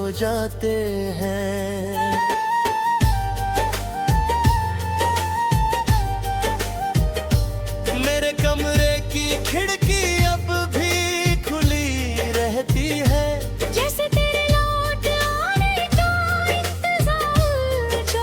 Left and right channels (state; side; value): identical; both; correlation 1.00